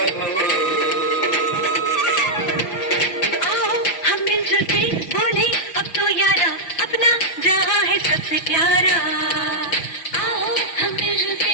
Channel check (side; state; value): right; late; 6.1 ms